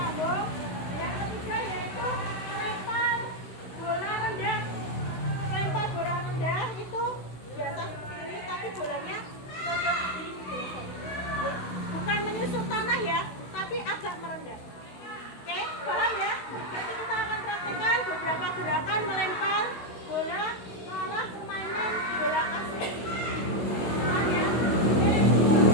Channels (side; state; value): right; late; 16 ms